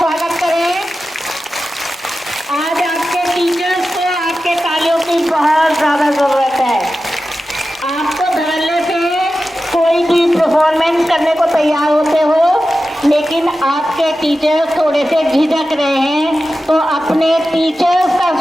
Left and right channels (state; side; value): normal; both; correlation 0.93